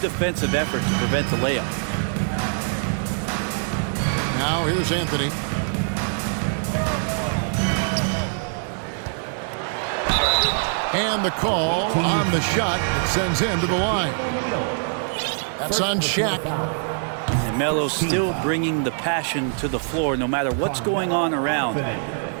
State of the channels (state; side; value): silent; left; 62 dB below the other